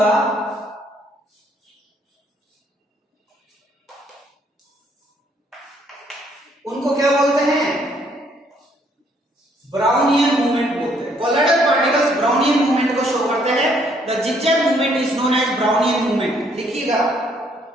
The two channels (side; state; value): both; normal; correlation 0.67